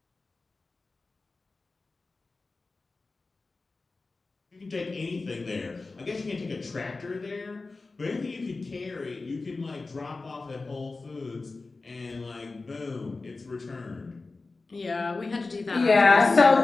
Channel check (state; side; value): quieter; right; 3.7 dB